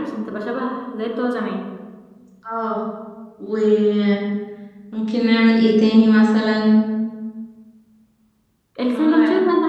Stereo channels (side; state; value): both; identical; correlation 1.00